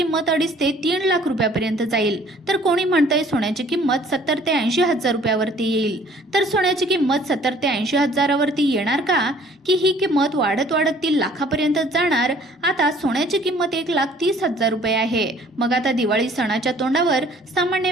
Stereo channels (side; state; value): both; normal; correlation 0.55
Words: 2.5 ते 3 लाख रुपयापर्यंत जाईल। तर कोणी म्हणतंय सोन्याची किंमत 70 ते 80 हजार रुपयावरती येईल। तर सोन्याची किंमत 70 ते 80 हजारावरती येणार का, की ही किंमत वाढत वाढत 3 लाखापर्यंत जाणार। आता सोन्याची किंमत 1,30,000 रुपये आहे। मग आता दिवाळी सणाच्या तोंडावर सामान्य